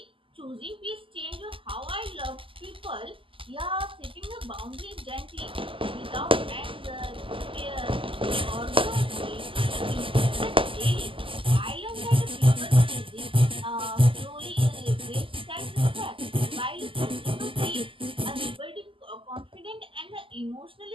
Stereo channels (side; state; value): left; late; 0.25 ms